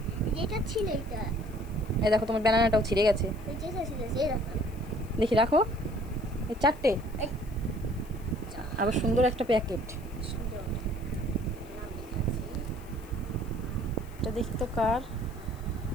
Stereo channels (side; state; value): left; noise; hiss, 25 dB below the sound